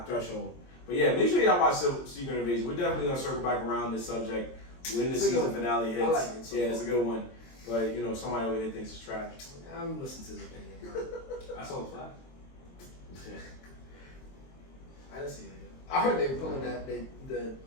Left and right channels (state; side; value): late; right; 23 ms